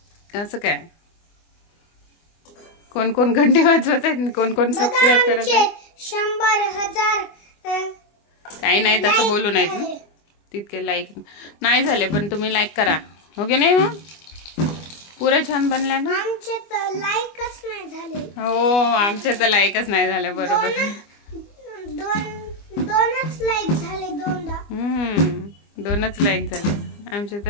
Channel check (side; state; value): right; late; 24 ms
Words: असं काय? कोण कोण घंटी वाजवत आहेत? कोण कोण सबस्क्राईब करत आहेत? 100,000 काही नाही तसं बोलू नाहीत ना. तितके लाईक नाही झाले पण तुम्ही लाईक करा. हो की नाही? मग पुरे छान बनल्या ना. आमचे तर लाईकच नाही झाले. हो आमचे तर लाईकच नाही झाले. बरोबर. दोनच लाईक झाले. दोनच लाईक झाले. आमचे